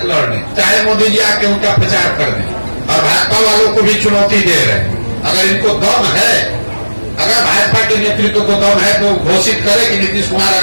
लड़ लें, चाहे मोदी जी आके उनका प्रचार कर दें। और भाजपा वालों को भी चुनौती दे रहे हैं, अगर इनको दम है, अगर भाजपा के नेतृत्व को दम है तो घोषित करे कि नीतीश कुमार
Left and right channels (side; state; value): both; inverted; correlation -1.00